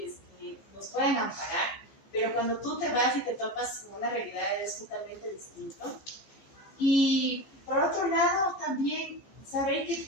que nos pueden amparar, pero cuando tú te vas y te topas con una realidad es totalmente distinto. Y por otro lado, también saber que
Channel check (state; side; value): late; right; 15 ms